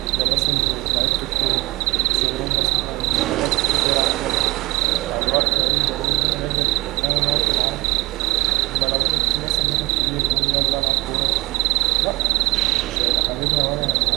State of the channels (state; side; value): quieter; left; 21.3 dB